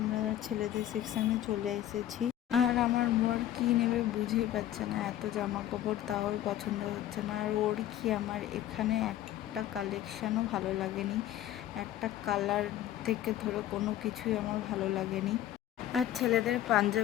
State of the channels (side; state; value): right; quieter; 12.7 dB